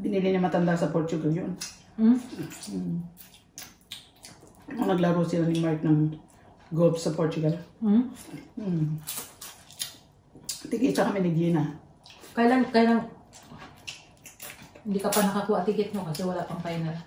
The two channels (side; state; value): both; identical; correlation 1.00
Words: niya matanda sa Portugal yun. Nung naglaro sila ni Mark ng golf sa Portugal. Tikita kami ni Gina. Kailan hindi ka pa nakakuha ticket mo kasi wala pang final.